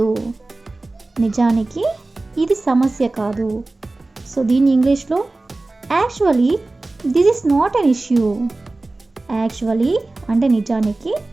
నిజానికి ఇది సమస్య కాదు. సో దీన్ని ఇంగ్లీష్లో actually this is not an issue. Actually అంటే నిజానికి,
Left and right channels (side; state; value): left; quieter; 3.1 dB